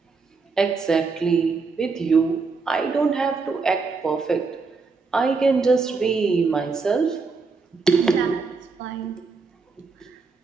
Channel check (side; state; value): left; quieter; 4.5 dB